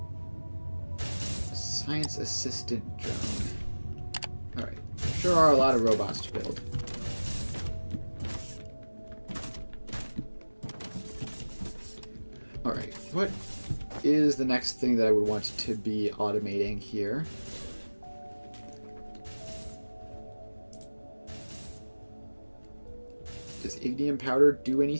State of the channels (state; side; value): inverted; both; correlation -1.00